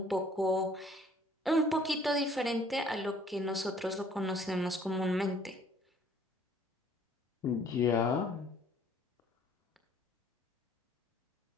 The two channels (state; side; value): normal; both; correlation 0.58